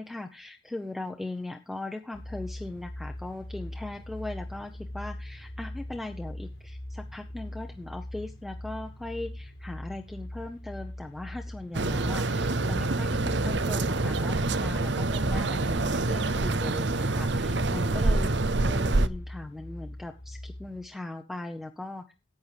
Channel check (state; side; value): normal; both; correlation 0.65